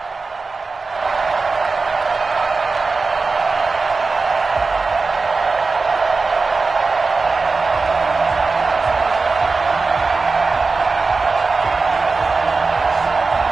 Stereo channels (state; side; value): quieter; left; 4.1 dB